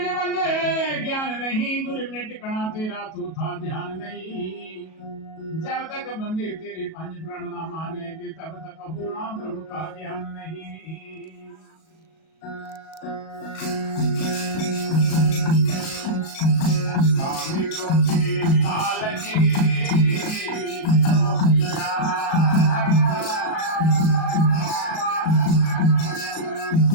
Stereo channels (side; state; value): right; late; 37 ms